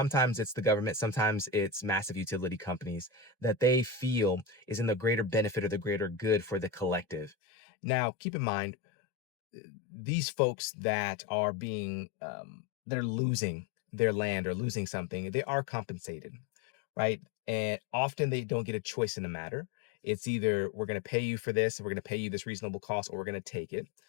it's the government, sometimes it's massive utility companies that they feel is in the greater benefit or the greater good for the collective. Now, keep in mind, these folks that are they're losing their land or losing something, they are compensated, right? And often they don't get a choice in the matter. It's either, we're going to pay you for this, we're going to pay you this reasonable cost, or we're going to take it.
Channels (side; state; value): right; drops out; at 7.4 s